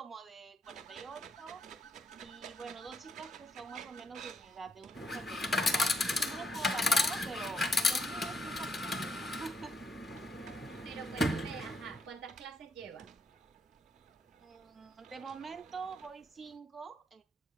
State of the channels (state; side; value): normal; both; correlation 0.74